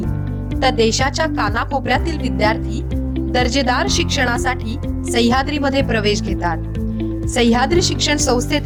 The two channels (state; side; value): identical; both; correlation 1.00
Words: तर देशाच्या कानाकोपऱ्यातील विद्यार्थी दर्जेदार शिक्षणासाठी सह्याद्रीमध्ये प्रवेश घेतात. सह्याद्री शिक्षण